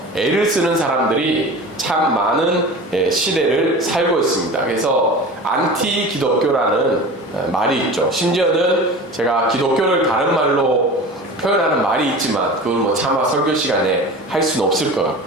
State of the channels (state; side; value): normal; both; correlation 0.35